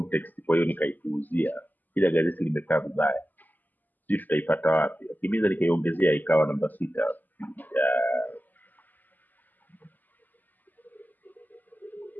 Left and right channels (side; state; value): right; late; 0.084 ms